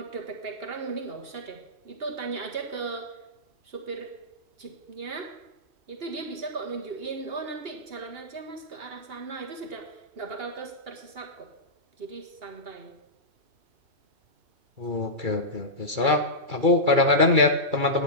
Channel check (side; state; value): left; late; 2.3 ms